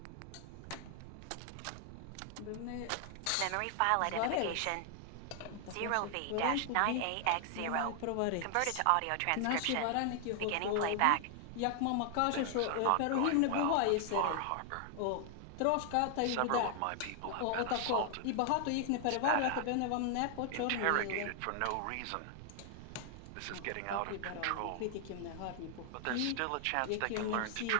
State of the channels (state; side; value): different; both; correlation 0.00